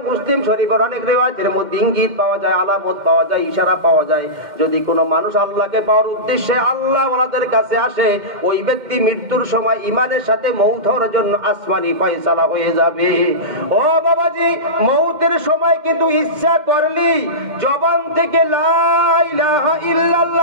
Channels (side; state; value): left; late; 2.1 ms